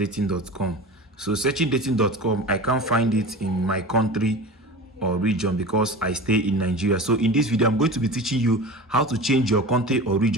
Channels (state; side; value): normal; both; correlation 0.33